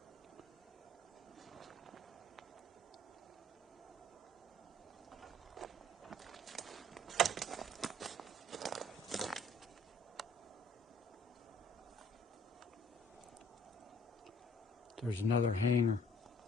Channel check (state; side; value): normal; both; correlation 0.59